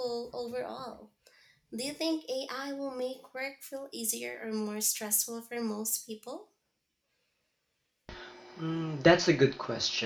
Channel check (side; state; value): both; identical; correlation 1.00